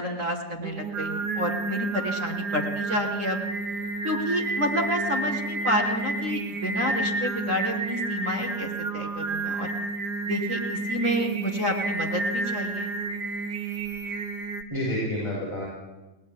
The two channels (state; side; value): late; left; 9.9 ms